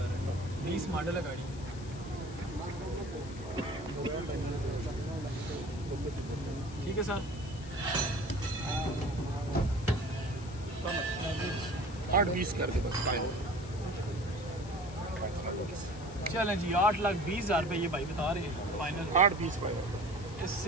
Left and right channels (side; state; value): left; noise; hiss, 18 dB below the sound